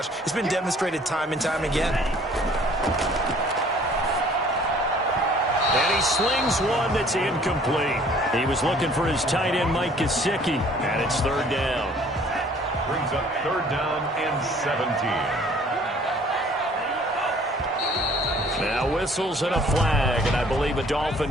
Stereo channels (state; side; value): normal; both; correlation 0.55